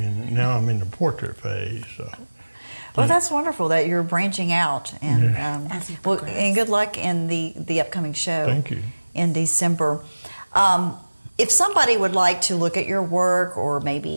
now I'm in the portrait phase. So. Well, that's wonderful that you're branching out, and As you well, progress. and good luck in the upcoming show. Thank you. In December. If somebody would like to look at your work or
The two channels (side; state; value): both; inverted; correlation -1.00